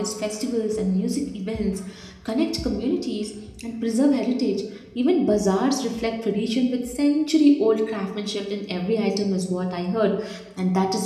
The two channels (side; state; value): both; identical; correlation 1.00